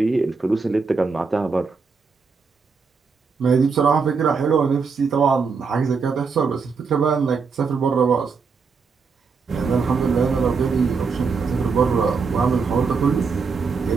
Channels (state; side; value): quieter; left; 5.1 dB